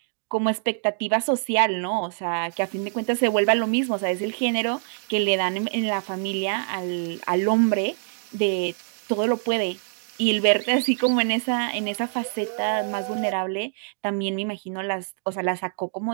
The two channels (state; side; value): silent; left; digital silence